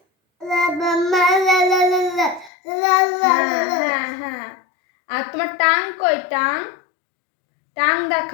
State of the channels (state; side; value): drops out; right; at 2.5 s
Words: হ্যাঁ হ্যাঁ। আর তোমার টাং কই? টাং টাং